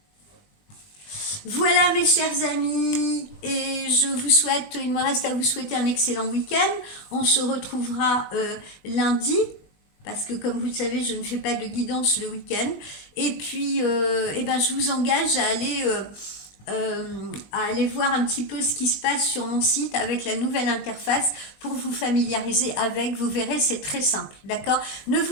Voilà mes chers amis, et je vous souhaite, il me reste à vous souhaiter un excellent week-end. On se retrouvera lundi, parce que comme vous le savez, je ne fais pas de guidance le week-end. Et puis, je vous engage à aller voir un petit peu ce qui se passe sur mon site avec la nouvelle interface pour vous familiariser avec. Vous verrez, c'est très simple, d'accord? Ne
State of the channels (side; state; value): right; late; 20 ms